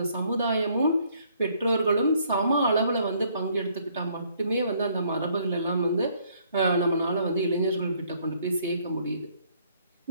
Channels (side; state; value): both; inverted; correlation -0.66